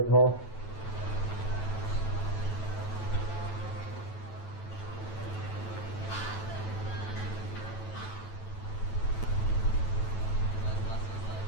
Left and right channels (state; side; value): late; right; 9.1 ms